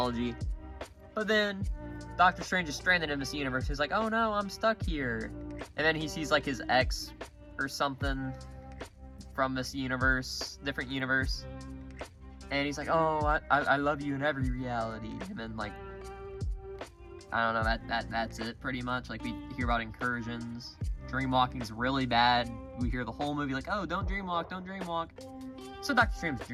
But then, Doctor Strange is stranded in this universe. He's like, oh no, I'm stuck here. And then he sees, like, his ex or something from this universe, different universe. And he's like, oh, I love you in every reality. And then, like, I don't know, that's it pretty much. Like, we hear about incursions. Dreamwalking's really bad. We hear the whole movie like, oh, don't dreamwalk, don't dreamwalk. So Doctor Strange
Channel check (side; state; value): both; identical; correlation 1.00